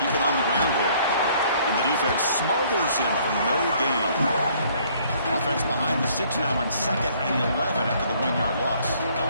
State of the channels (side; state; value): both; inverted; correlation -0.61